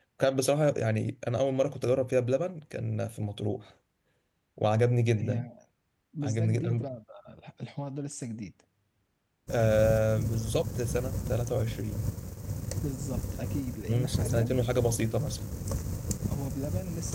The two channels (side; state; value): both; identical; correlation 1.00